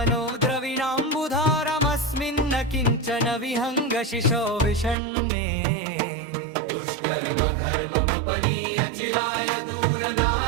द्रविणाम्बुधारमस्मिन्न किञ्चन विहङ्गशिशो विषण्णे दुष्कर्मघर्ममपनीय चिराय दूर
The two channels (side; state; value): left; drops out; at 5.0 s